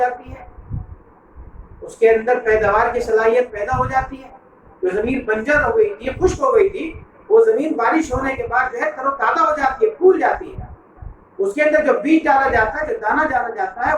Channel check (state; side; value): identical; both; correlation 1.00